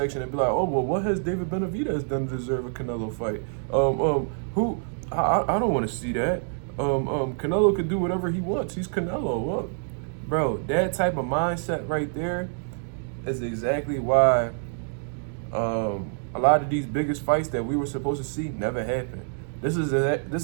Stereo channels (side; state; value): left; silent; 61 dB below the other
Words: and be like, "Oh, well, what has David Benavidez done to deserve a Canelo fight? Who? I don't want to see that. Canelo could do whatever he wants. He's Canelo." Well, bro, that type of mindset right there is exactly why a lot of these biggest fights that we were supposed to see never happened. This